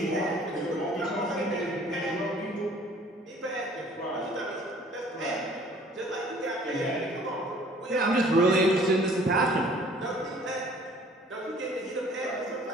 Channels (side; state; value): both; normal; correlation 0.54